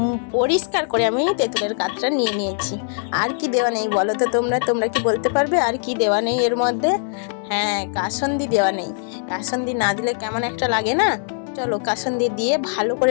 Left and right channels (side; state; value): right; silent; 65 dB below the other